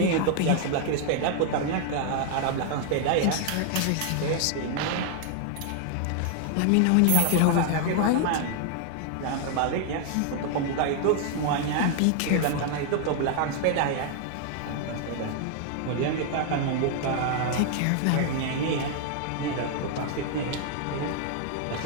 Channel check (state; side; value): different; both; correlation 0.00